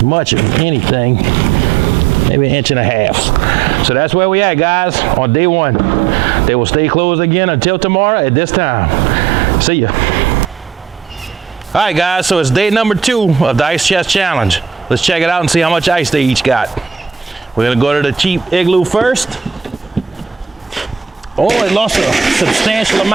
much of anything, maybe 1.5 inches. So that's where we at, guys, on day 1. They will stay closed again until tomorrow at this time. See ya. All right, guys, so it's day number 2 of the Ice Chest Challenge. Let's check it out and see how much ice they each got. We're gonna go to the cheap Iglue first. Oh, it lost a substantial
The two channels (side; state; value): left; quieter; 7.2 dB